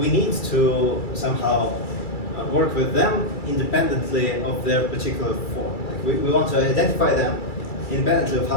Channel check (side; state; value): right; late; 2.3 ms